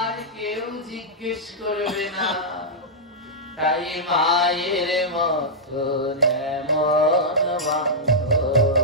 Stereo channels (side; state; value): both; normal; correlation -0.10